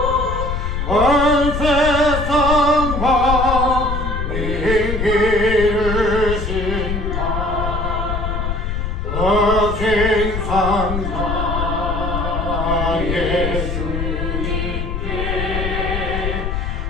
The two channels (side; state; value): left; noise; rumble, 2 dB below the sound